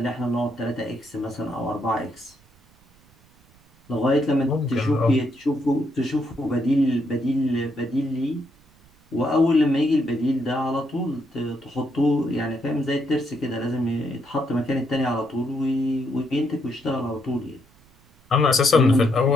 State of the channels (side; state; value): right; noise; rumble, 30 dB below the sound